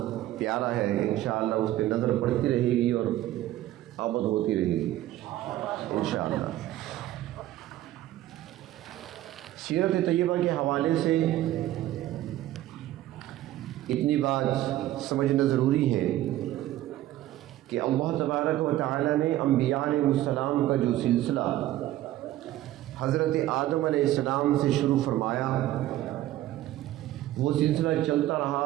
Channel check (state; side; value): quieter; left; 14.6 dB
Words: پیارا ہے، انشاءاللہ اس پہ نظر پڑتی رہے گی اور آمد ہوتی رہے گی انشاءاللہ۔ سیرت طیبہ کے حوالے سے اتنی بات سمجھنا ضروری ہے کہ اللہ تبارک و تعالی نے انبیاء علیہ السلام کا جو سلسلہ حضرت آدم علیہ السلام سے شروع فرمایا، وہ سلسلہ چلتا